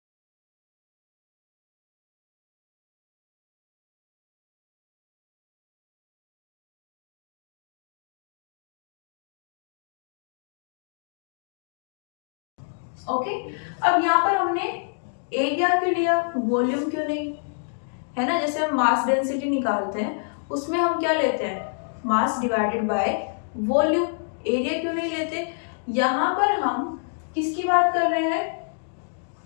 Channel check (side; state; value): right; silent; digital silence